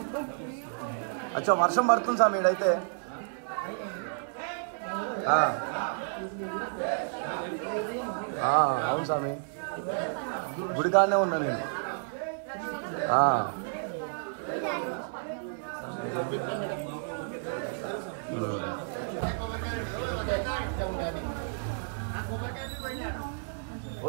అచ్చా వర్షం పడుతుంది స్వామి ఈడైతే అవును స్వామి గుడికాడనే ఉన్నా నేను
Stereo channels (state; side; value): silent; left; digital silence